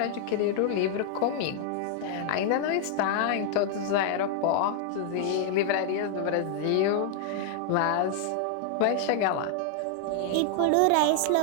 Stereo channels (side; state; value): both; different; correlation 0.00